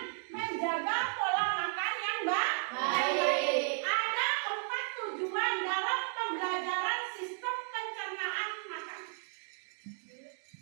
menjaga pola makan yang baik. Ada 4 tujuan dalam pembelajaran sistem pencernaan makan.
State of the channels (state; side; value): silent; left; 55 dB below the other